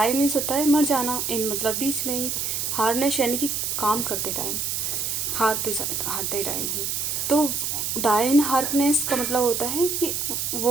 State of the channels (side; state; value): right; noise; hiss, 1 dB below the sound